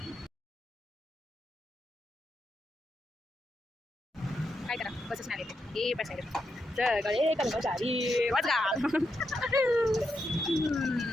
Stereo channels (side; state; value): both; normal; correlation 0.84